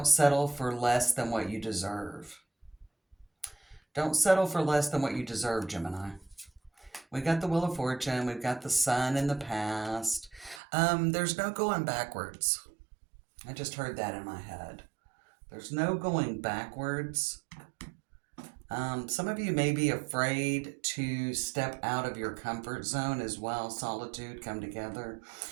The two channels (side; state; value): left; drops out; at 10.6 s